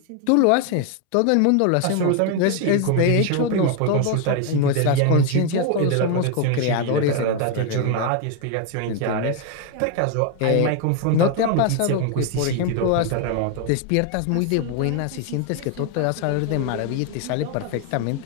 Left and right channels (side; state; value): both; different; correlation 0.01